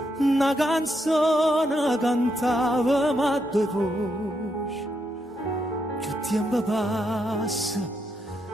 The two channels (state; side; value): normal; both; correlation 0.80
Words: una canzone cantavamo a due voci, più tempo passa